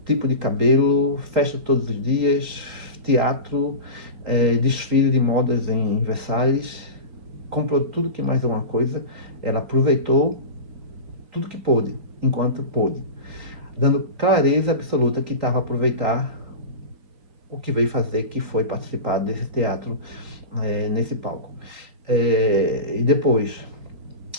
tipo de cabelo, festa todos os dias, teatro, desfile de modas em Versalhes, comprou tudo que mais alguma coisa, ela aproveitou tudo que pôde, enquanto pôde, dando clareza absoluta que estava a aproveitar o que veio fazer, que foi participar desse teatro, nesse palco. E depois,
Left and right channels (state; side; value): late; left; 3.9 ms